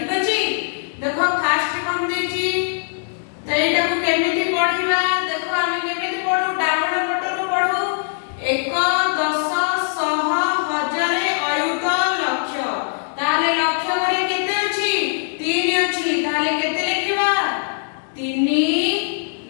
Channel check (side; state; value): right; silent; digital silence